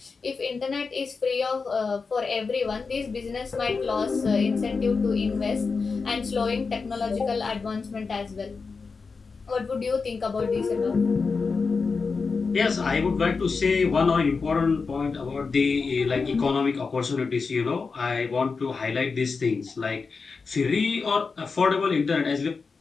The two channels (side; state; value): right; quieter; 4.7 dB